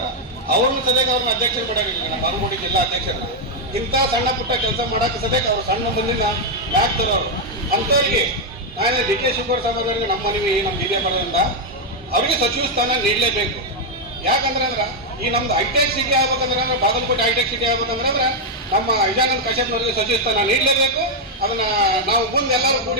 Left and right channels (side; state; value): both; normal; correlation 0.00